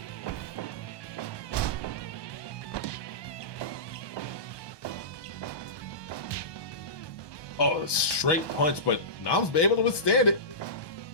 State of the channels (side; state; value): right; late; 1.2 ms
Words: Oh, a straight punch, but Noms be able to withstand it.